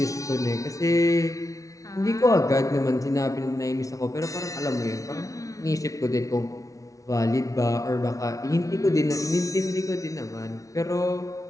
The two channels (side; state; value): right; late; 0.17 ms